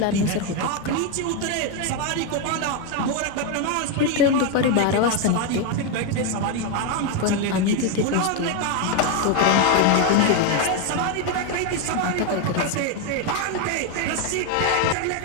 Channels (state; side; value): different; both; correlation 0.02